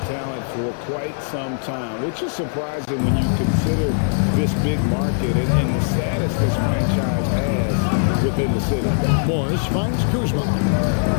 talent for quite some time, which is surprising when you consider this big market and the status this franchise has within the city. Morris finds Kuzma.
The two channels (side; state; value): right; silent; 65 dB below the other